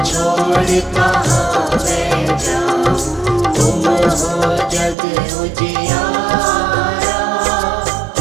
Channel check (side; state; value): left; drops out; at 5.0 s